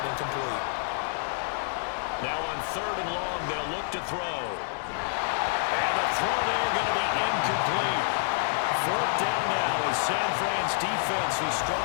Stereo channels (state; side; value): silent; right; digital silence